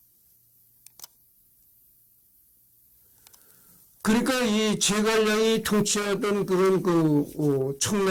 그러니까 이 제갈량이 통치하던 그런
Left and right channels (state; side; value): identical; both; correlation 1.00